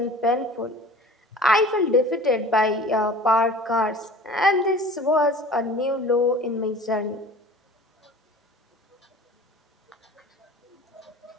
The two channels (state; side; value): normal; both; correlation 0.43